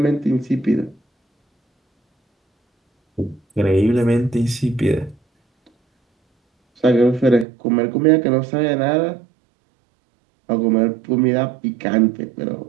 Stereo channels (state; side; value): drops out; left; at 7.5 s